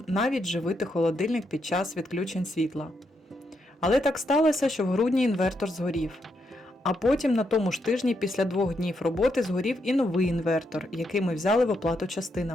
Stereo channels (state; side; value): normal; both; correlation 0.80